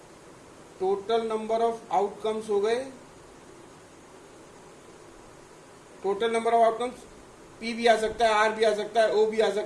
हो गए, total number of outcomes P भी आ सकता है, R भी आ सकता है, O भी आ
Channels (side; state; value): both; identical; correlation 1.00